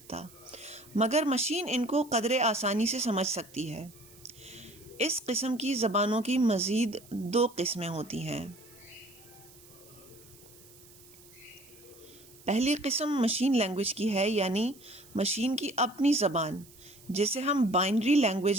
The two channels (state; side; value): noise; right; hiss, 23 dB below the sound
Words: مگر مشین ان کو قدرے آسانی سے سمجھ سکتی ہے۔ اس قسم کی زبانوں کی مزید دو قسمیں ہوتی ہیں۔ پہلی قسم مشین لینگویج کی ہے، یعنی مشین کی اپنی زبان، جسے ہم بائنری